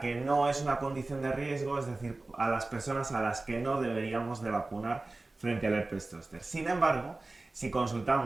no es una condición de riesgo, es decir, a las personas a las que no deberíamos de vacunar frente al herpes zóster. Sin embargo, si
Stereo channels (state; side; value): quieter; left; 3.1 dB